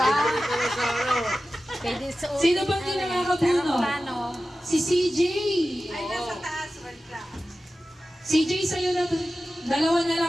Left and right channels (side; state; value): both; normal; correlation 0.94